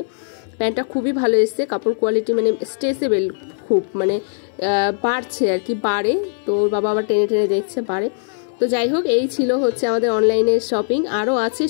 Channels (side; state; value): right; silent; 66 dB below the other